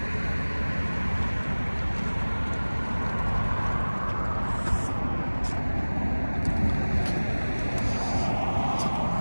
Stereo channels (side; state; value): both; inverted; correlation -1.00